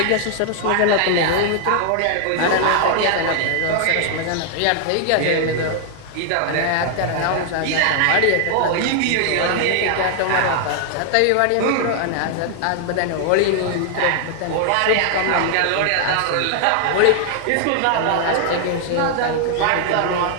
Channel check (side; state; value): both; different; correlation 0.00